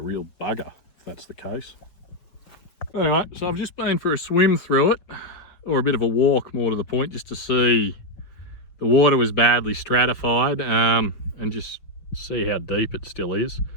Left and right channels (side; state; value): right; late; 5.7 ms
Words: real bugger if that's the case. Anyway, so I've just been for a swim through it, or a bit of a walk more to the point, just to see. The water was badly stratified, and just see how deep it still is.